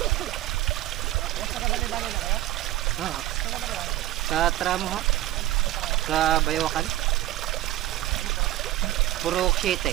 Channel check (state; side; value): quieter; left; 15.1 dB